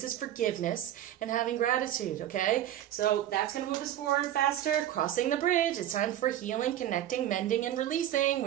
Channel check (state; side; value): quieter; left; 11.9 dB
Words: is forgiveness and having gratitude, okay? So that's going to move us forward faster. Crossing the bridge. It's time for healing, connecting, mending, and releasing,